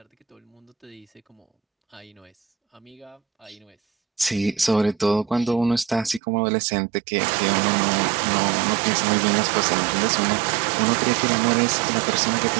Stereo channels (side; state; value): left; drops out; at 6.2 s